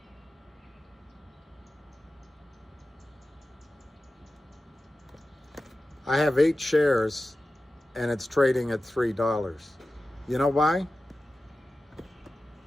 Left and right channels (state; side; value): normal; both; correlation 0.94